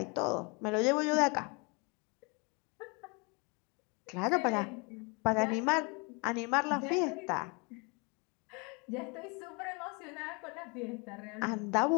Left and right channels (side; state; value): right; quieter; 31.2 dB